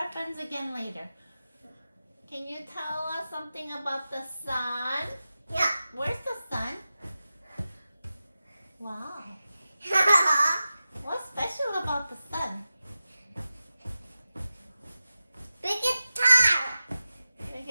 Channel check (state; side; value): inverted; both; correlation -0.93